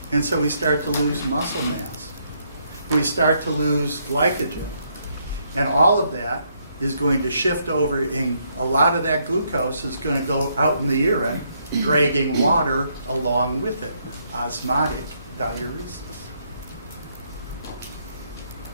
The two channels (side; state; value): both; inverted; correlation -0.73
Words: And so we start to lose muscle mass. We start to lose glycogen. And all of that is going to shift over, and a lot of that glucose is going to go out in the urine, dragging water along with it. Osmotic diuresis.